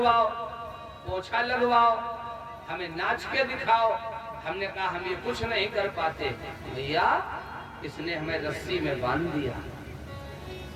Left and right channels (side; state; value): both; identical; correlation 1.00